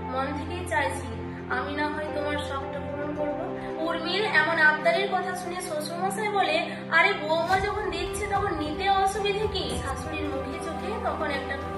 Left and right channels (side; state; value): both; identical; correlation 1.00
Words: মন থেকেই চাইছি আমি না হয় তোমার শখটা পূরণ করবো। উর্মির এমন আবদারের কথা শুনে শ্বশুরমশাই বলে, আরে বৌমা যখন দিচ্ছে তখন নিতে অসুবিধে কি? শাশুড়ির মুখে চোখে তখন একটা